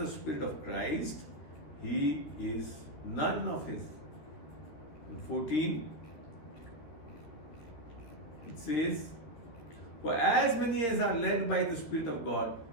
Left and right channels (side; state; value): right; late; 13 ms